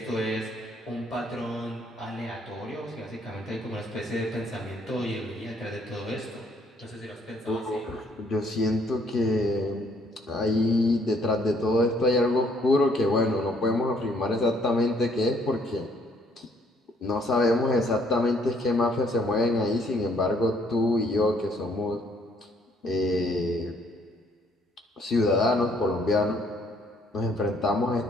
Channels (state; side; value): normal; both; correlation 0.65